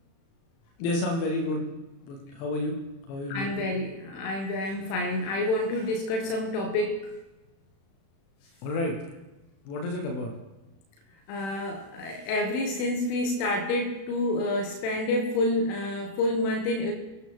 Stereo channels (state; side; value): late; right; 36 ms